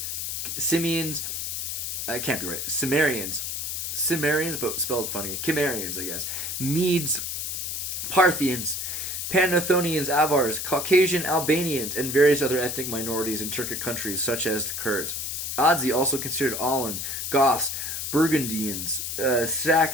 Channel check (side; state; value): left; noise; hiss, 3 dB below the sound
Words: Simians, I can't be right, Cimmerians, but spelled funny, Cimmerians, I guess, Medes, Parthians, Panathonians, Avars, Caucasian Albanians, and various other ethnic minorities in Turkic countries such as the Kurds. Adzi also considered Alan, Goths, Burgundians,